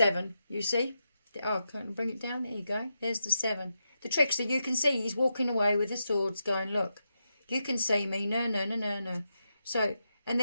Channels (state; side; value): inverted; both; correlation -0.86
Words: you see? Oh, can I bring it down? There you go. There's the 7. The trickster, you can see he's walking away with the swords going, look, you can see me. No, no, no, no, no. So, and